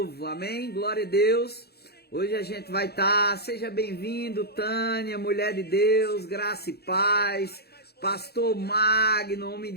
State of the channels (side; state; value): right; late; 0.47 ms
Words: amém? Glória a Deus. Hoje a gente vai estar, seja bem-vindo, Tânia, mulher de Deus, graça e paz, pastor Magno, homem